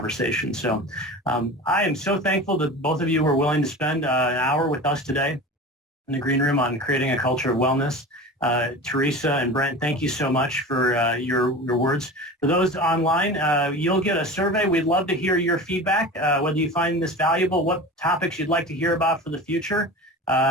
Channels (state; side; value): normal; both; correlation 0.33